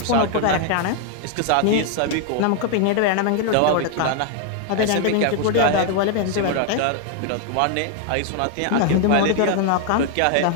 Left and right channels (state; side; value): different; both; correlation 0.00